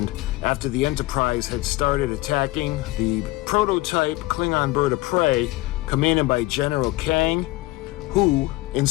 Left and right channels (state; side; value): quieter; right; 19.8 dB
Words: after the Enterprise had started attacking the prototype Klingon bird of prey, commanded by General Kang, who,